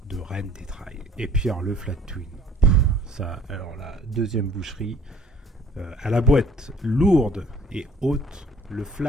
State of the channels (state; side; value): normal; both; correlation 0.57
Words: de reine des trails. Et puis alors, le Flat Twin, ça, alors la deuxième boucherie, à la boîte lourde et haute, le